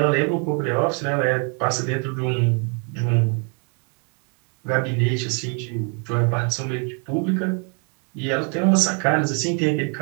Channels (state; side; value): quieter; left; 39.1 dB